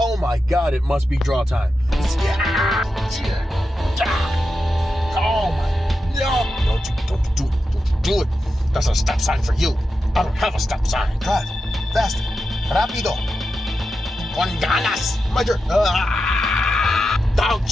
my God, it must be draw time. Oh my, no! Don't you do it. That's a stop sign for you. I don't have a stop sign. Drive faster, rápido, con ganas. My turn. Dog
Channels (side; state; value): both; normal; correlation 0.89